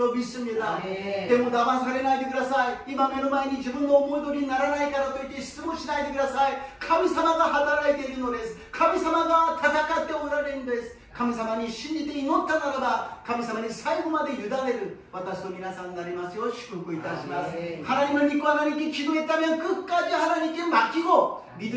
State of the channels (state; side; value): identical; both; correlation 1.00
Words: 믿습니다. 때문에 나만されないでください。今目の前に自分の思い通りにならないからといって失望しないでください。神様が働いているのです。神様が戦っておられるんです。 神様に信じて祈ったならば神様に最後まで委ねる私と皆さんになりますよう祝福いたします。 하나님을 믿고 하나님께 기도했다면 끝까지 하나님께 맡기고